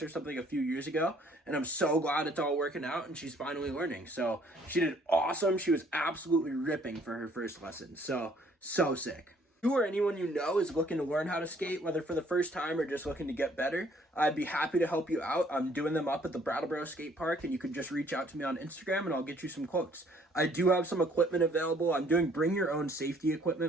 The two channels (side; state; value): both; normal; correlation 0.61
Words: or something a few years ago, and I'm so glad it's all working out and she's finally learning. So she did awesome. She was absolutely ripping for her first lesson. So sick. You or anyone you know is looking to learn how to skate, whether for the first time or just looking to get better, I'd be happy to help you out. I'm doing them up at the Brattleboro Skate Park, and you can just reach out to me on Instagram and I'll get you some quotes. I do have some equipment available. I'm doing bring your own safety